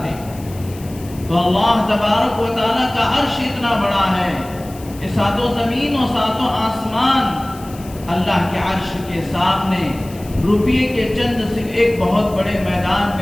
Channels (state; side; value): noise; left; hiss, 20 dB below the sound